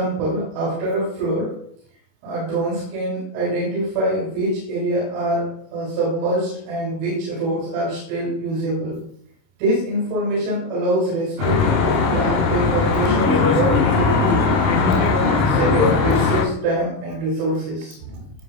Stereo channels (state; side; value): late; left; 26 ms